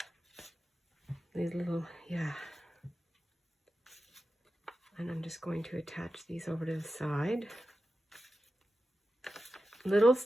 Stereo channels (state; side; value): normal; both; correlation 0.92